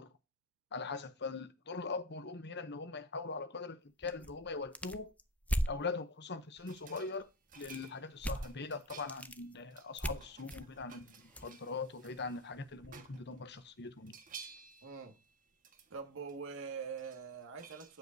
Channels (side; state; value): both; normal; correlation 0.22